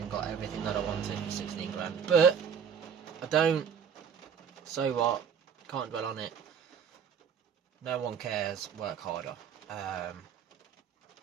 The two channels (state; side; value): quieter; left; 7.4 dB